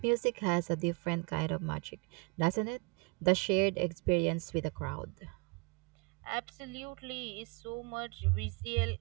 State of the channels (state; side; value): quieter; left; 31.9 dB